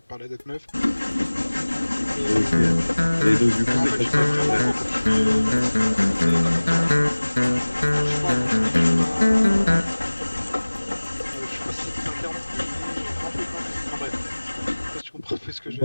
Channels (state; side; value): inverted; both; correlation -1.00